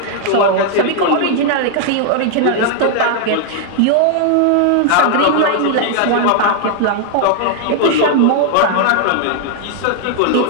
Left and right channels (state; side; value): different; both; correlation 0.00